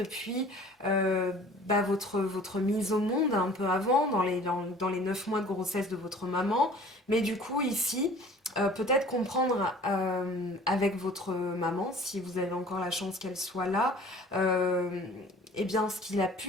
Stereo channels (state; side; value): normal; both; correlation 0.48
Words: votre mise au monde un peu avant, dans les 9 mois de grossesse de votre maman. Mais du coup, ici, peut-être comprendre avec votre maman, si vous avez encore la chance qu'elle soit là, eh bien, ce qu'il a